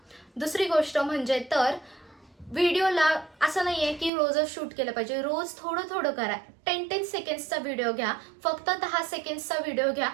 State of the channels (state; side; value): drops out; left; at 4.1 s